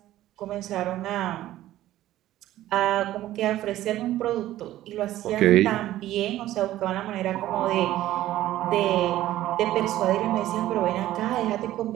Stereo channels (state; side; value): quieter; left; 14.3 dB